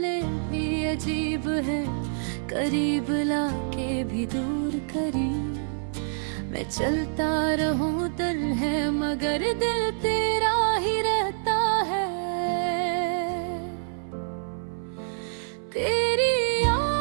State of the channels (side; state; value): left; silent; 59 dB below the other